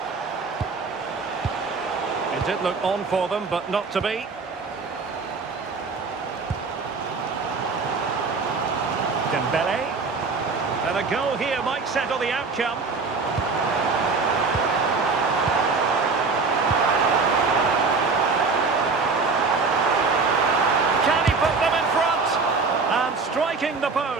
It did look on for them, but not to be. Dembele. And a goal here might settle the outcome. Can he put them in front? And striking the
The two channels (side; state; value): left; quieter; 4.4 dB